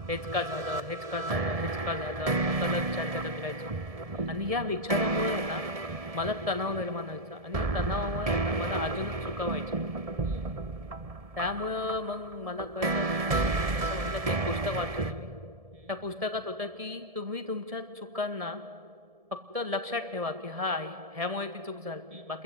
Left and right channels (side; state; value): left; late; 1.7 ms